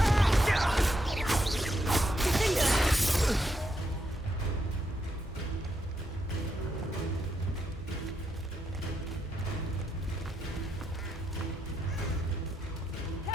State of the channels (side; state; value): both; normal; correlation 0.80